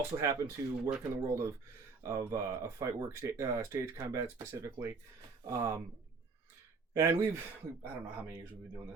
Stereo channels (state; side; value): quieter; left; 4.5 dB